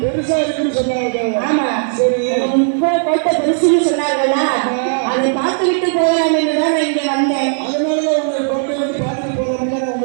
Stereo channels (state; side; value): silent; left; digital silence